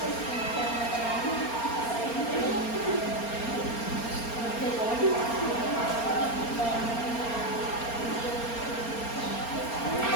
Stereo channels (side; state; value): right; late; 4.3 ms